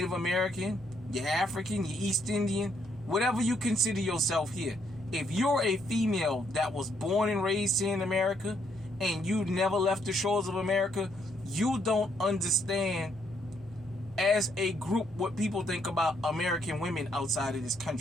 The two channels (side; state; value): both; normal; correlation 0.72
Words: American, you're African, you're East Indian, whatever you consider yourself here. If you're a female that was born and raised here in America and you never left the shores of America, you don't understand as a group what people think about American women outside of this